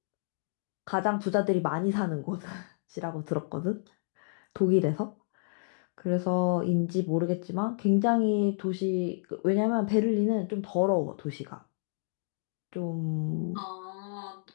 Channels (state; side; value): silent; right; digital silence